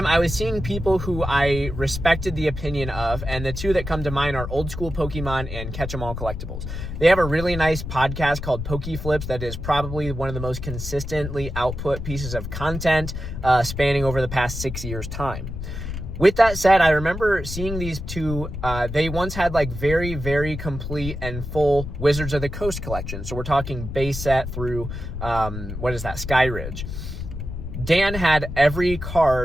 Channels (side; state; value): left; noise; rumble, 7 dB below the sound